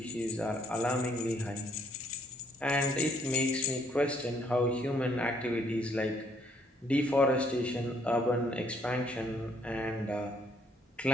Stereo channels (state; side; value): normal; both; correlation 0.67